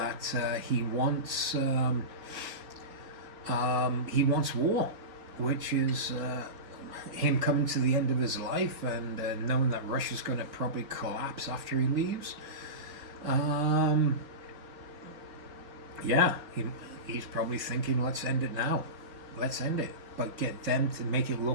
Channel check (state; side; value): late; left; 4.8 ms